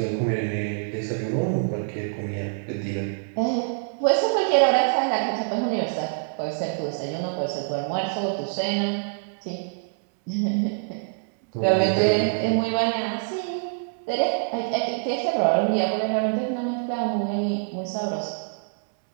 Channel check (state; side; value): silent; left; digital silence